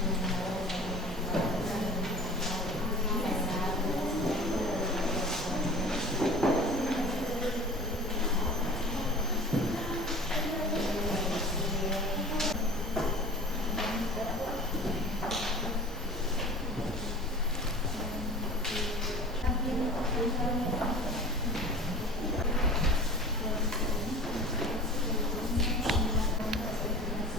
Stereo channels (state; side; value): normal; both; correlation 0.40